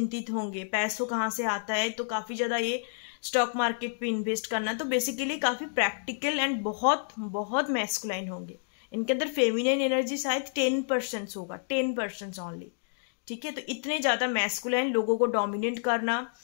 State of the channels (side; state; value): right; silent; digital silence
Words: होंगे, पैसों कहाँ से आता है, तो काफी ज्यादा ये स्टॉक मार्केट पे इन्वेस्ट करना। तो बेसिकली काफी प्रैक्टिकल एंड बहुत बहुत मैस्कुलाइन होंगे, इनके अंदर फेमिनिन एनर्जी शायद 10% होगा, 10% ओनली। ठीक है, तो इतने ज्यादा मैस्कुलाइन, लोगों को डोमिनेट करना,